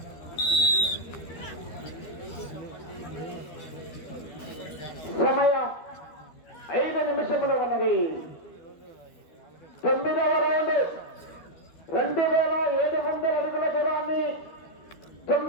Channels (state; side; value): late; right; 13 ms